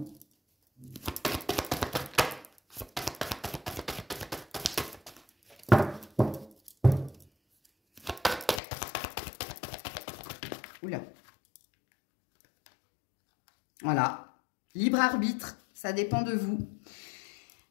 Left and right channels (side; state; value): right; drops out; at 8.6 s